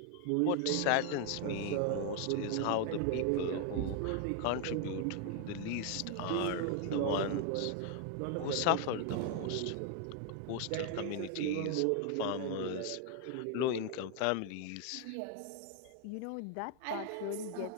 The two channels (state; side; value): different; both; correlation 0.00